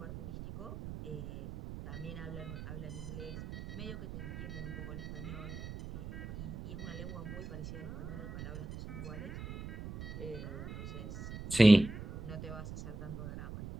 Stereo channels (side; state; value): right; noise; rumble, 9 dB below the sound